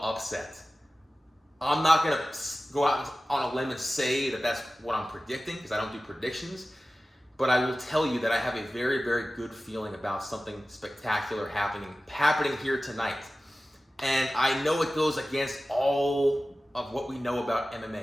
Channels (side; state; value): both; normal; correlation 0.96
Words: upset. I'm not going to go out on a limb and say that that's what I'm predicting, because I don't do predictions. But I will tell you that I have a very, very good feeling about something spectacular happening here tonight. And I know it goes against all of what we know about